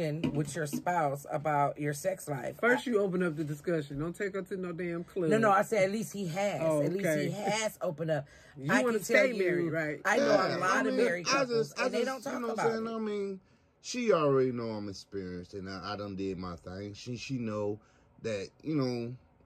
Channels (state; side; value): identical; both; correlation 1.00